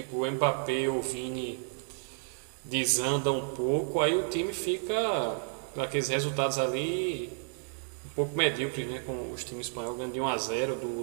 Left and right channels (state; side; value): silent; left; 57 dB below the other